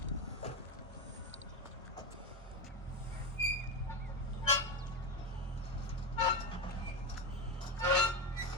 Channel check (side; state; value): both; normal; correlation 0.13